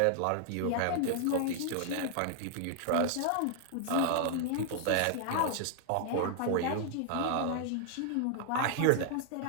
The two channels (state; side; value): different; both; correlation -0.01